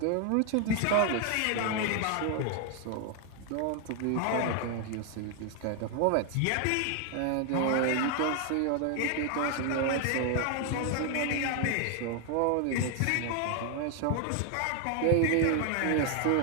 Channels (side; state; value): both; different; correlation 0.00